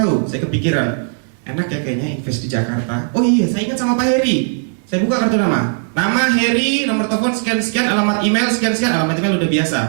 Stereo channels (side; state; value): left; silent; digital silence